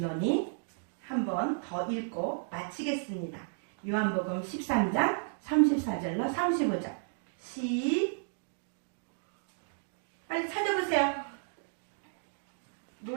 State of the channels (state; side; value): silent; left; digital silence